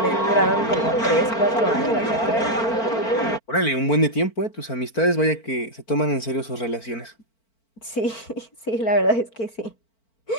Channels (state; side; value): late; right; 4.5 ms